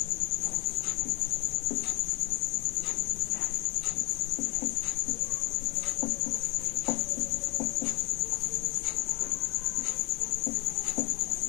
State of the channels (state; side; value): quieter; right; 25.6 dB